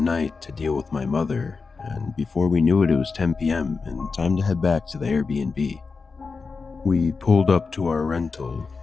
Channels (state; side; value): quieter; right; 4.6 dB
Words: to deal with my mother, and before we knew it, it was 10 p.m. and time to head back to the Airbnb. We pulled up to our rental.